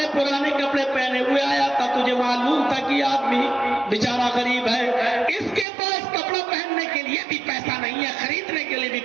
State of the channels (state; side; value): drops out; left; at 5.7 s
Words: پرانے کپڑے پہنے ہوئے آیا تھا، تجھے معلوم تھا کہ آدمی بیچارہ غریب ہے، اس کے پاس کپڑا پہننے کے لیے بھی پیسہ نہیں ہے، خریدنے کے لیے بھی